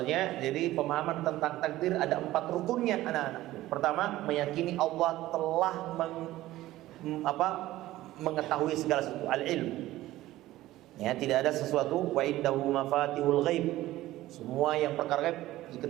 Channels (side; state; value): left; quieter; 16.0 dB